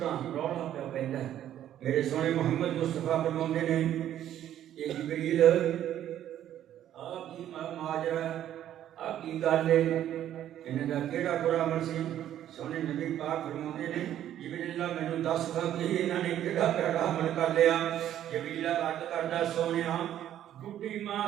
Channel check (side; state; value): left; quieter; 11.4 dB